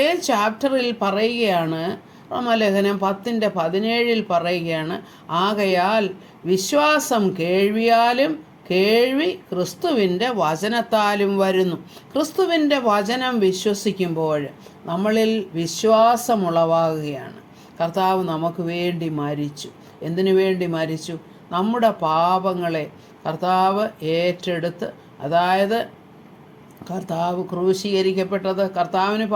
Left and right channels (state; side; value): identical; both; correlation 1.00